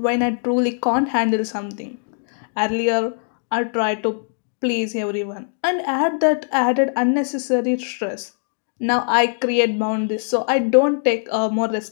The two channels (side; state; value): right; silent; digital silence